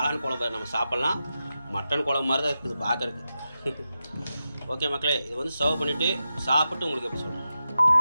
குழம்பு நம்ம சாப்பிட்லாம். மட்டன் குழம்பு மாதிரி தான் இருக்குது பார்க்குறதுக்கு. ஓகே மக்களே, இது வந்து சர்வ் பண்ணிவிட்டு சாப்பிட்டு உங்களுக்கு எப்படி சொல்லுங்கள்.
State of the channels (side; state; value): both; inverted; correlation -0.90